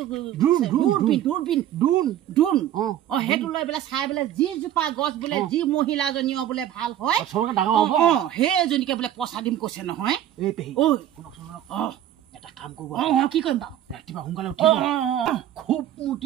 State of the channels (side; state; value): left; quieter; 11.6 dB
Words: দূৰবীন সেইটো লৈ বোলে চাই বোলে যিজোপা গছ বোলে যি মহিলাজনীও বোলে ভাল হয় সেইজনীকে বোলে পইচা দিম কৈছে নহয় এটা কাম কৰিব কি কৰিম বাৰু ৰাতিপুৱা সোনকালে উঠিব খুব